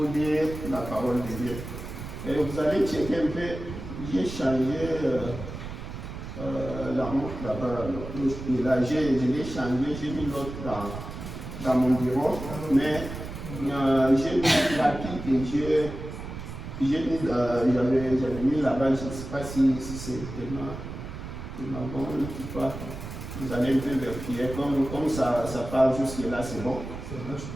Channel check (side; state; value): right; noise; rumble, 9 dB below the sound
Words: dire la parole de Dieu. Et vous allez checker un peu, j'ai changé la montre là-bas. Je l'ai changé, j'ai mis l'autre dans mon bureau, mais j'ai mis la pique et j'avais mis là-bas, je ne sais pas si c'est tellement bon ou pas. Vous allez un peu vérifier, comme ça part jusque là, c'est bon.